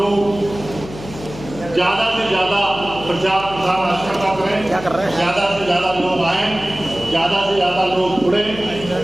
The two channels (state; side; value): noise; left; hum, 14 dB below the sound